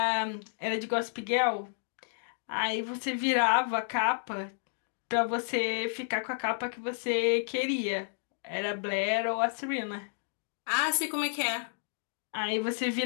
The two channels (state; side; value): silent; right; digital silence